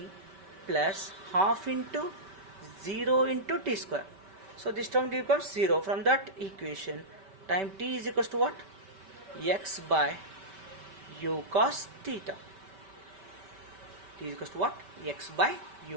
plus half into 0 into t square. So this term becomes 0. From that equation, time t is equals to what? X by u cos theta. T is equals to what? X by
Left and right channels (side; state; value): left; late; 5.2 ms